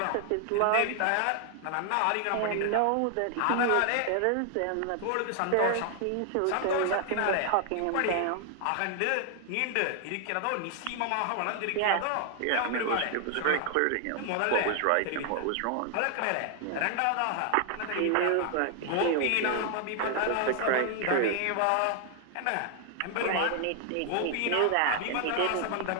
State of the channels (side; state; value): both; different; correlation 0.00